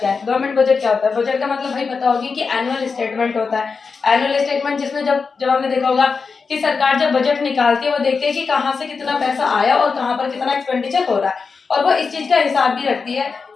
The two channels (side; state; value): right; quieter; 5.0 dB